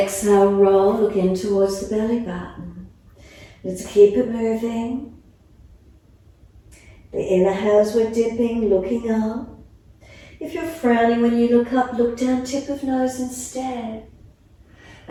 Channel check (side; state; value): both; identical; correlation 1.00